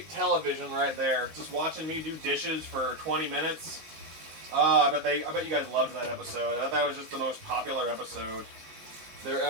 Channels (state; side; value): late; left; 19 ms